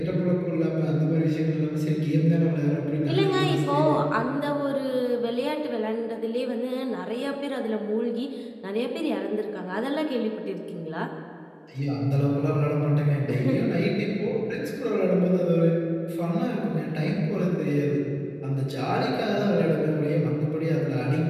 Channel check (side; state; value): both; identical; correlation 1.00